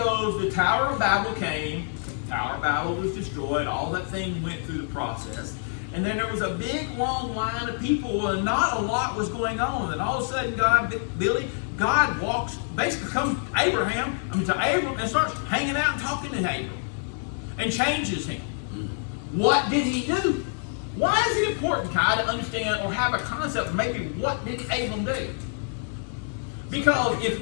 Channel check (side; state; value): right; silent; 61 dB below the other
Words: the Tower of Babel came. Tower of Babel was destroyed, all that thing went through the process, and then there was a big long line of people and not a lot was going on, and all of a sudden God comes to Abram and starts hanging out and talking to Abram and changes him. What did he do? Why is it important, Kai, to understand or have a concept of maybe what did Abram do? Because